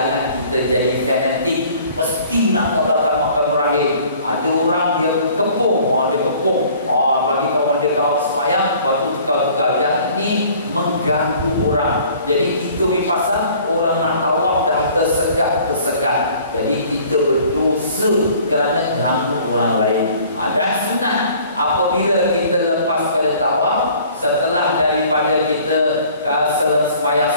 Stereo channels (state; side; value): inverted; both; correlation -0.53